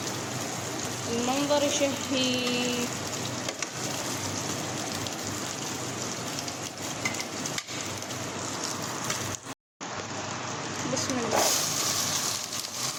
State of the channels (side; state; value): both; identical; correlation 1.00